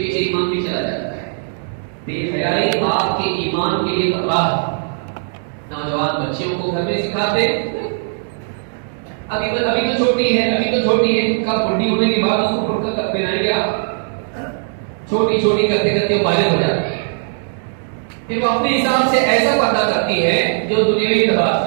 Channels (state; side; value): silent; left; digital silence